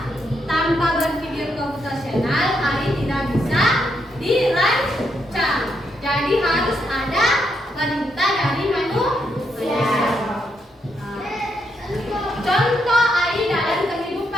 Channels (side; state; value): both; normal; correlation 0.79